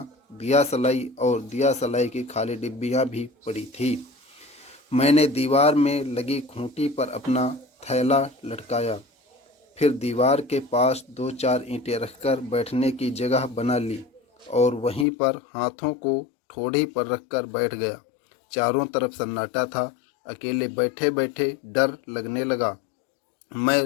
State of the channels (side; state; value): right; drops out; at 15.1 s